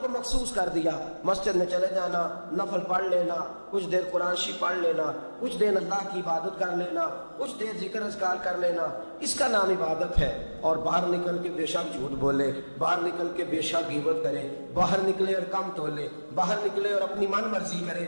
کو مخصوص کر دیا، مسجد میں چلے جانا، نفل پڑھ لینا، کچھ دیر قرآن شریف پڑھ لینا، کچھ دیر اللہ کی عبادت کر لینا، کچھ دیر ذکر اذکار کر لینا، اس کا نام عبادت ہے۔ اور باہر نکل کے بے شک جھوٹ بولے، باہر نکل کے بے شک غیبت کرے، باہر نکلے اور کم تولے، باہر نکلے اور اپنی من مرضی کرے،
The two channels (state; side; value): inverted; both; correlation -1.00